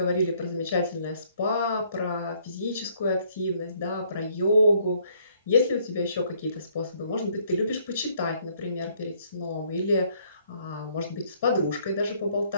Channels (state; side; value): inverted; both; correlation -0.66